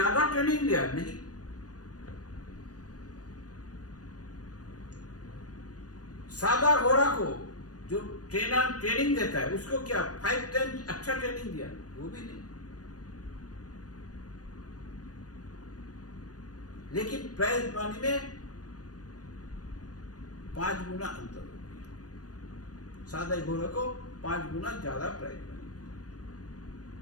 ट्रेनिंग लिया? नहीं। सादा घोड़ा को जो ट्रेनर ट्रेनिंग देता है उसको क्या 5 टाइम्स अच्छा ट्रेनिंग दिया? वो भी नहीं। लेकिन प्राइज मनी में 5 गुना अंतर हो गया, सादा घोड़ा को 5 गुना ज्यादा प्राइज मनी।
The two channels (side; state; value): right; late; 0.68 ms